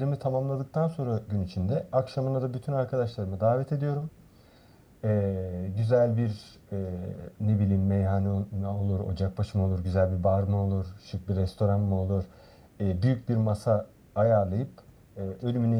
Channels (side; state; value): both; identical; correlation 1.00